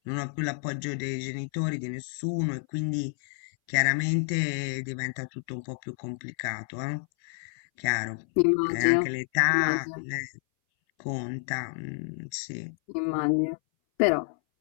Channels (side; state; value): right; silent; 58 dB below the other